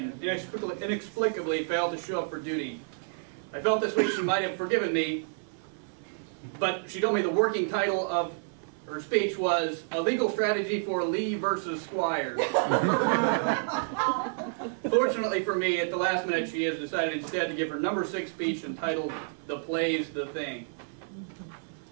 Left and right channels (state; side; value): silent; left; 58 dB below the other